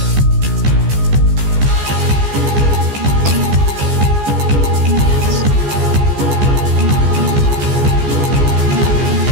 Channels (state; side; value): late; left; 14 ms